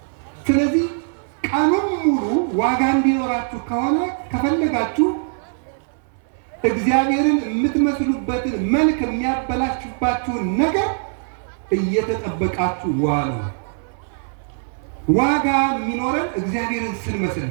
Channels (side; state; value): left; silent; 65 dB below the other